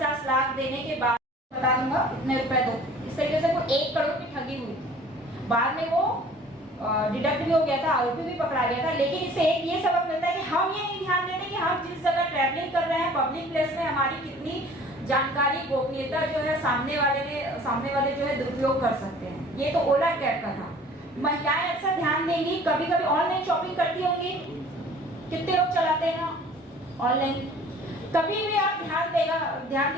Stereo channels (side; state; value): both; normal; correlation 0.49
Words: लाख देने के बाद बता दूंगा इतने रुपए दो, इस तरीके से वो 1 करोड़ की ठगी हुई थी। बाद में वो डिडक्ट भी हो गया था, आरोपी भी पकड़ा गया था। लेकिन इससे एक ये सबक मिलता है कि हम ये नहीं ध्यान देते कि हम जिस जगह ट्रैवलिंग कर रहे हैं पब्लिक प्लेस में हमारी कितनी जानकारी गोपनीयता जो है सामने वाले जो है दुरुपयोग कर सकते हैं। ये तो ओला कैब का था। महिलाएं अक्सर ध्यान देंगी, कभी कभी ऑनलाइन शॉपिंग करती होंगी, कितने लोग चलाते हैं ऑनलाइन। कभी भी आप ध्यान